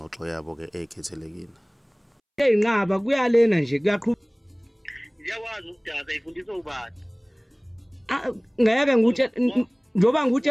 yabo ke ekhethelekile. Eyinqaba kuyalena nje kuyaqhubeka. Ngiyakwazi ukudada ifundisa ubani. Ngeke nguthe njoba nguthi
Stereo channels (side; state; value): both; identical; correlation 1.00